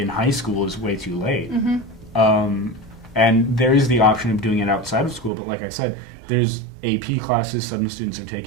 high school is way too late. And there is the option of doing it outside of school, but like I said, there's AP classes some students are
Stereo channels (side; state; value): left; drops out; at 5.3 s